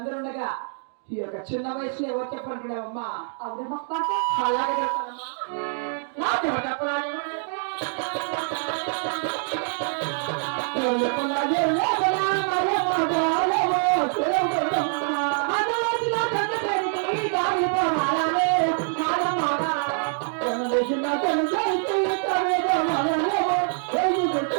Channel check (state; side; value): silent; left; 58 dB below the other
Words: ఉండగా ఈ యొక్క చిన్న వయసులో ఎవరు చెప్పనుకున్నావమ్మా? అలాగే చెప్తానమ్మా. నాకు చెప్పాలి